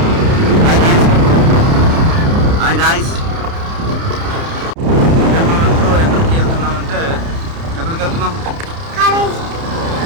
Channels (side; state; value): left; late; 30 ms